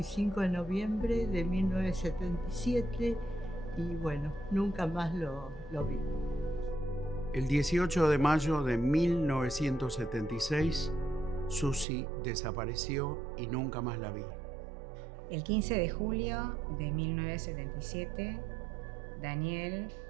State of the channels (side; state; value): left; drops out; at 11.9 s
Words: de noviembre de 1977 y bueno, nunca más lo vi. El 18 de mayo de 1976, Susi desapareció y nunca más la vi. El 15 de julio de 1977, Daniel